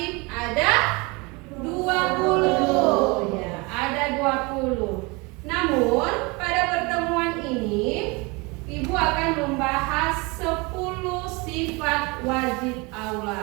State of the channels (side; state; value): left; quieter; 27.1 dB